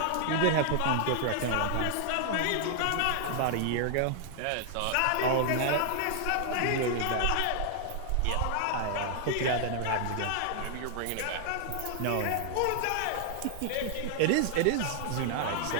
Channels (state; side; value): different; both; correlation 0.00